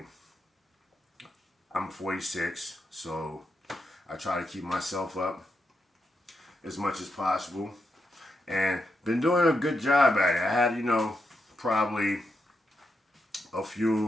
I'm 46, so I try to keep myself up as much as possible, and been doing a good job at it. I had, you know, probably a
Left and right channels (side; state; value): both; normal; correlation 0.84